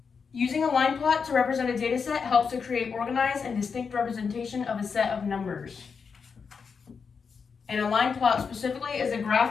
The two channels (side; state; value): right; quieter; 5.7 dB